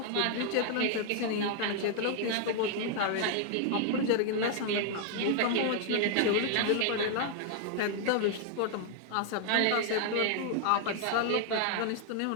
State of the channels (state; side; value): different; both; correlation 0.00